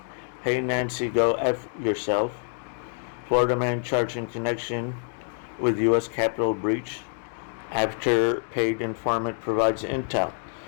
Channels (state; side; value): silent; right; 57 dB below the other